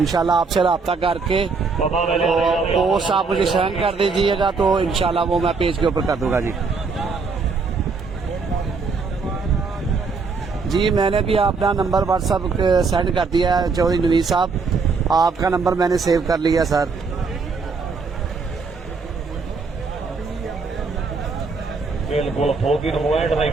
आपसे रब्ता करके पोस्ट आप मुझे सेंड कर दीजिएगा, तो इंशाल्लाह वो मैं पेज के ऊपर कर दूंगा। जी मैंने भी अपना नंबर व्हाट्सअप सेंड कर दिया है चौधरी नवीद साहब, आपका नंबर मैंने सेव कर लिया सर। बिल्कुल नहीं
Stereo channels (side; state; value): left; quieter; 4.6 dB